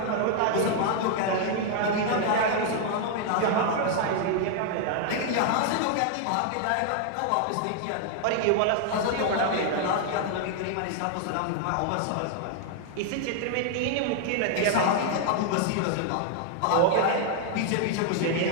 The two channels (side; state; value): both; different; correlation 0.00